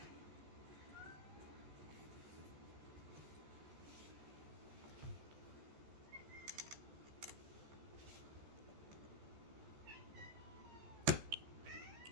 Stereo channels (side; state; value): left; late; 14 ms